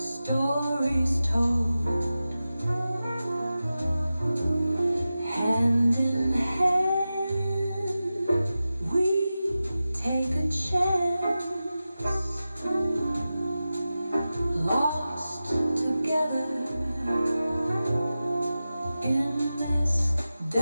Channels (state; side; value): inverted; both; correlation -0.94